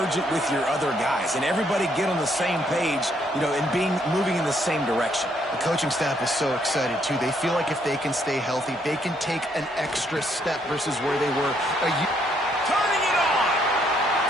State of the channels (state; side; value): normal; both; correlation 0.71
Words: it with your other guys and everybody get on the same page, and moving in the same direction. The coaching staff is so excited, too. They feel like if they can stay healthy, they can take an extra step versus where they were turning it on.